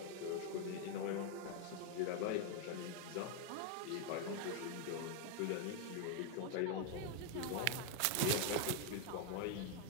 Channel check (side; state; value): both; different; correlation 0.00